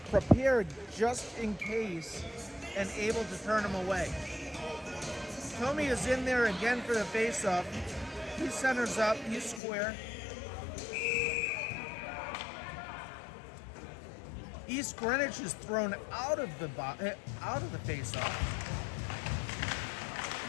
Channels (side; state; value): right; drops out; at 9.6 s